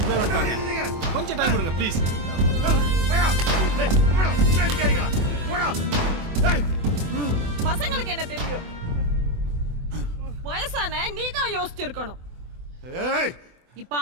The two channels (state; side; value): late; left; 24 ms